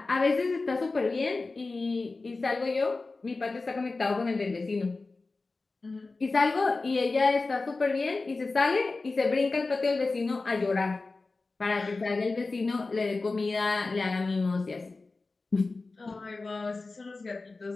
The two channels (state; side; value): quieter; right; 3.6 dB